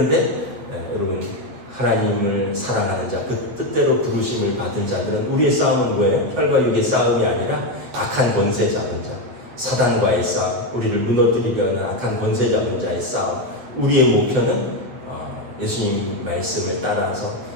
여러분 하나님을 사랑하는 자, 그 뜻대로 부르심을 받은 자들은 우리의 싸움은 뭐예요? 혈과 육의 싸움이 아니라 악한 권세 잡은 자, 사단과의 싸움, 우리를 무너뜨리려는 악한 권세 잡은 자의 싸움. 우리의 목표는 예수님 말씀을 따라서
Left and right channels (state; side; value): late; left; 8.3 ms